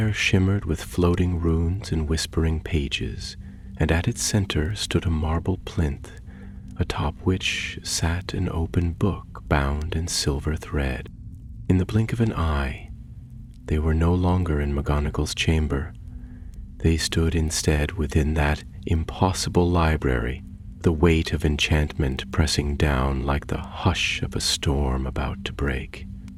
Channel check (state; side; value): identical; both; correlation 1.00